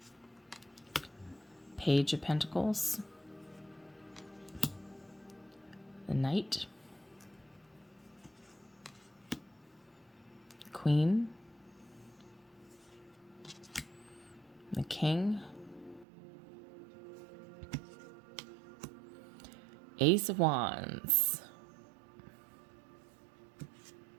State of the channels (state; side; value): drops out; left; at 16.1 s